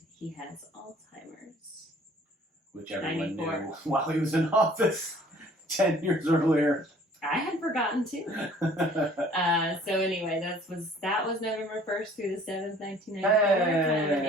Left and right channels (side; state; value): both; normal; correlation 0.54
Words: he has Alzheimer's. Which everyone 94. knew while he was in office 10 years earlier. I had forgotten too. So anyway, that was November 1st through the 7th, 1994. Kind of an